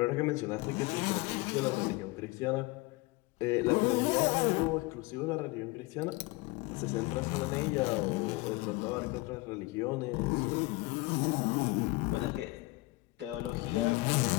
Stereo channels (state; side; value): quieter; right; 22.8 dB